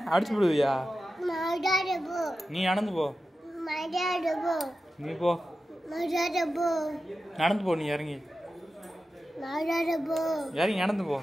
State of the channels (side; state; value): both; normal; correlation 0.92